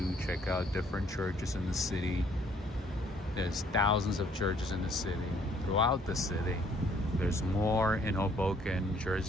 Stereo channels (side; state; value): both; normal; correlation 0.63